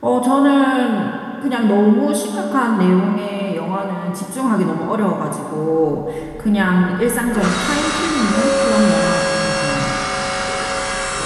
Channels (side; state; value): both; identical; correlation 1.00